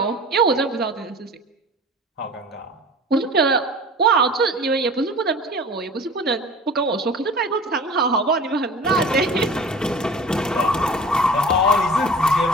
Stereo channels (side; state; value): both; normal; correlation 0.40